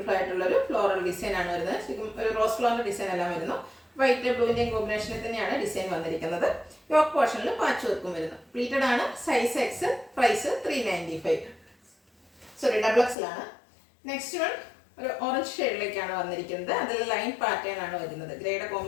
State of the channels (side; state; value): right; drops out; at 13.2 s